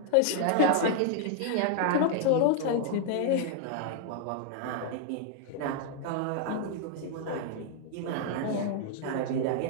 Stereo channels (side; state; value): both; different; correlation 0.00